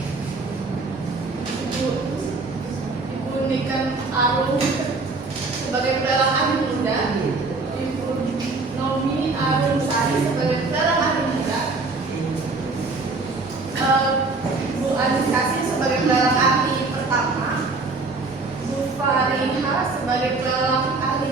Ibu Niken Arum sebagai pelelang ahli muda, Ibu Nomi Arum Sari sebagai pelelang ahli muda, Bu Anis Kasih sebagai pelelang ahli pertama, Bu Fariha sebagai pelelang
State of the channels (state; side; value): quieter; left; 3.7 dB